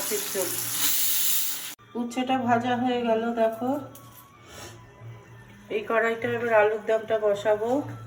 ঝোল। উচ্ছেটা ভাজা হয়ে গেল, দেখো। এই কড়াইটা এবার আলুর দমটা বসাবো।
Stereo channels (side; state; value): both; identical; correlation 1.00